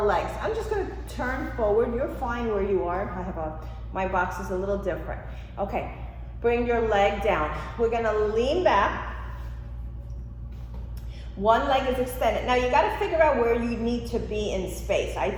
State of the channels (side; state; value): both; identical; correlation 1.00